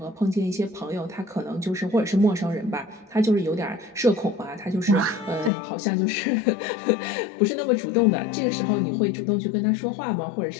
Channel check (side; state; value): right; drops out; at 5.5 s